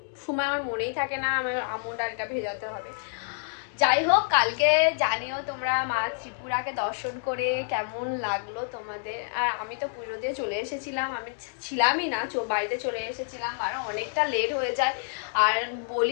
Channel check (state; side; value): silent; right; digital silence